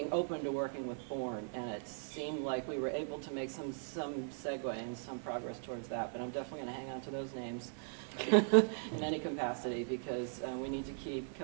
open to working with Bourne. And it seemed like we were able to make some segue and some progress towards that. But I'm definitely going to hang on to those names in any capacity, because we need to keep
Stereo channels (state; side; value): silent; left; digital silence